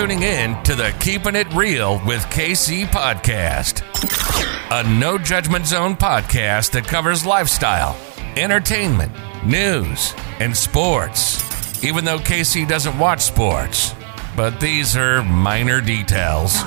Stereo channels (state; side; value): silent; left; 59 dB below the other